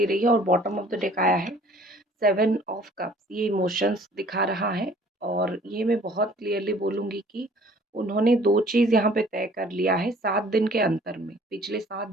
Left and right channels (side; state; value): both; normal; correlation 0.54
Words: रही है, और बॉटम ऑफ द डेक आया है 7 ऑफ कप्स। ये इमोशंस दिखा रहा है, और ये मैं बहुत क्लियरली बोलूँगी कि उन्होंने 2 चीज़ यहाँ पे तय कर लिया है 7 दिन के अंतर में। पिछले 7